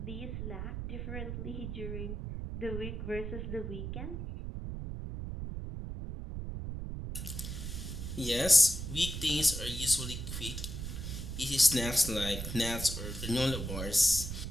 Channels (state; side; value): noise; right; rumble, 5 dB below the sound